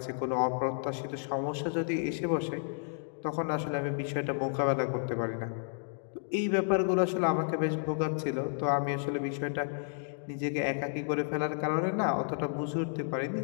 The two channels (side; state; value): right; silent; digital silence